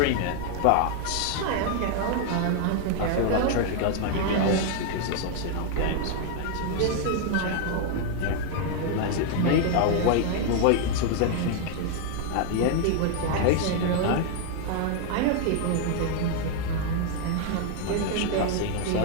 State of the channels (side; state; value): both; different; correlation 0.00